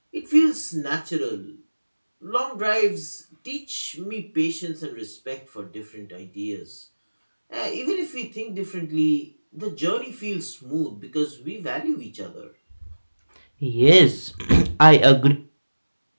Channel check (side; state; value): both; inverted; correlation -1.00